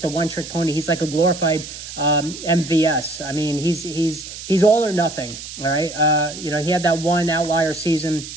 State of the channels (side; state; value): right; noise; hiss, 11 dB below the sound